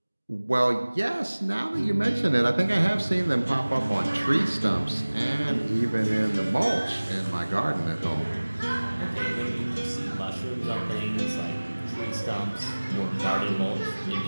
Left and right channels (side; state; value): both; inverted; correlation -1.00